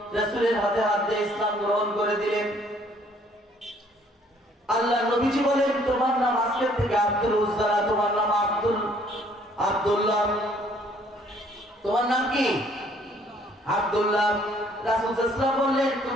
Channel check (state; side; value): normal; both; correlation 0.62